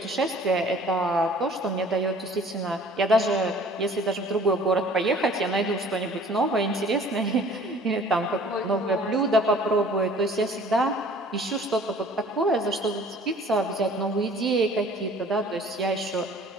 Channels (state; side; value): normal; both; correlation 0.51